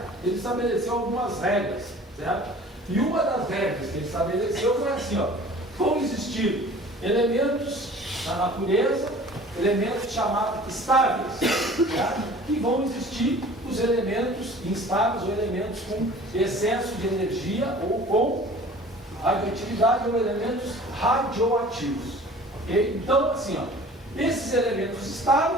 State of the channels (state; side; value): normal; both; correlation 0.46